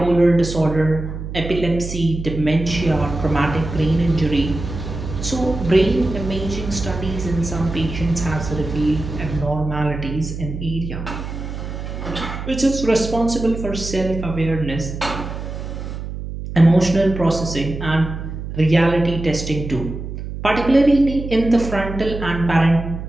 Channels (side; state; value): right; noise; hum, 7 dB below the sound